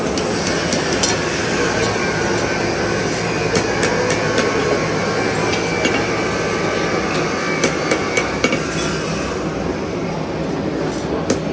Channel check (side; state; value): both; identical; correlation 1.00